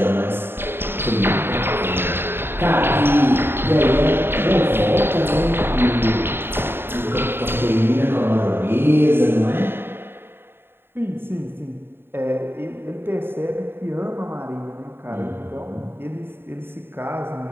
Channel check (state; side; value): late; left; 0.11 ms